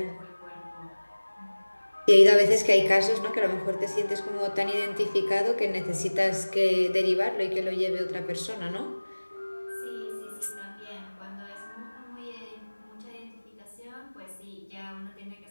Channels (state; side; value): inverted; both; correlation -1.00